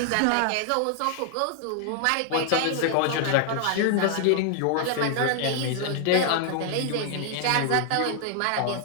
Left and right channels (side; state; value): both; different; correlation 0.00